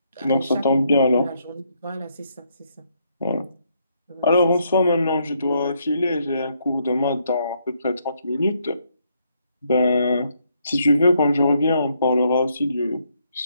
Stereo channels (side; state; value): both; inverted; correlation -0.74